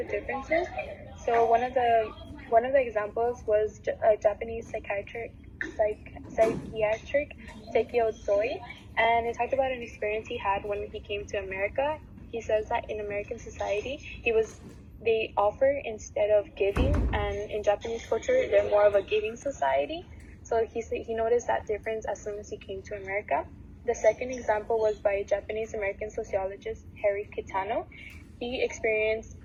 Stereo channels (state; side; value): identical; both; correlation 1.00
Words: differences. So one of the examples was a Japanese psychiatric Sekio Tsoi, and it talked about an experience he had when he came to America. He says that in American society, they offer instead of giving, and in Japanese culture, they're more of a giving society. So he noticed that difference as soon as he came to America. The second example was by Japanese-American sociologist Harry Kitano. He experienced